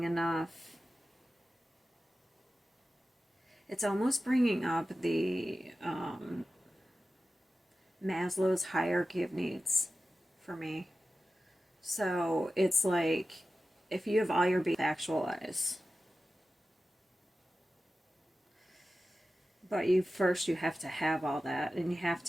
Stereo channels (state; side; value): normal; both; correlation 0.94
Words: enough. It's almost bringing up the Maslow's hierarchy of needs for me. So it's like if you have all your basic actualize, but you have to have all that, and you have